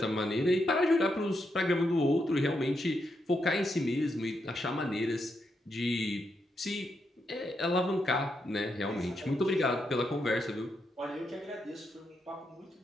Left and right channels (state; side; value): normal; both; correlation 0.82